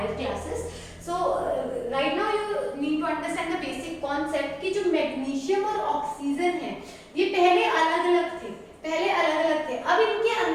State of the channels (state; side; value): identical; both; correlation 1.00